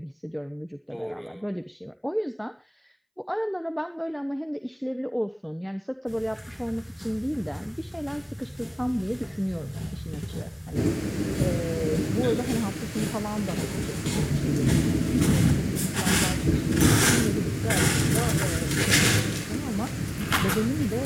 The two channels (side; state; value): both; identical; correlation 1.00